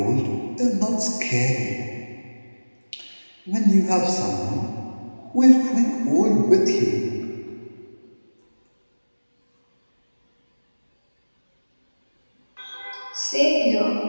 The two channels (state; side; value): inverted; both; correlation -1.00